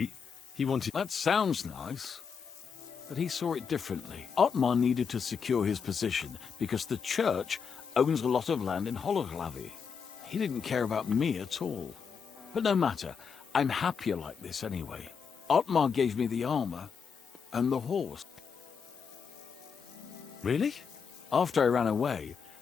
he wanted... That sounds nice. But he saw it differently. Otmar needed to secure his position because the church owns a lot of land in Hologlavi. He didn't care about me at all. But no matter, I'm happier like this anyway. Otmar gave me the armor and the horse. Really? After I ran away,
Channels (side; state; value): right; quieter; 6.3 dB